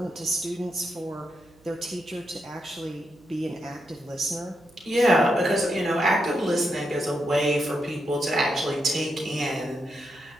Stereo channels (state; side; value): noise; right; hum, 29 dB below the sound